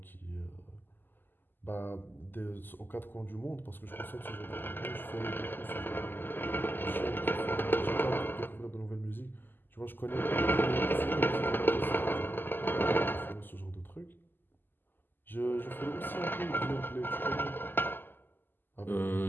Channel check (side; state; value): right; late; 0.092 ms